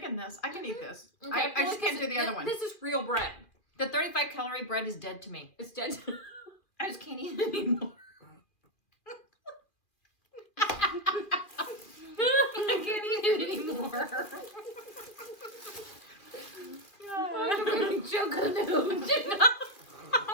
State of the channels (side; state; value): right; late; 2.4 ms